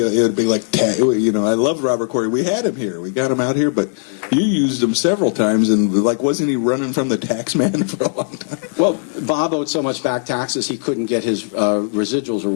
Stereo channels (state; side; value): silent; right; 66 dB below the other